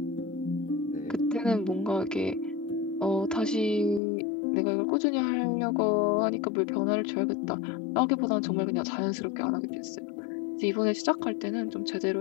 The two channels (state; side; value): drops out; right; at 4.0 s